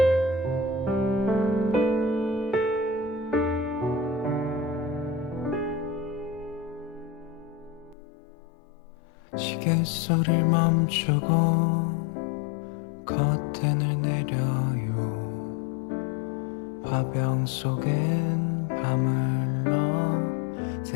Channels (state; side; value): drops out; right; at 8.0 s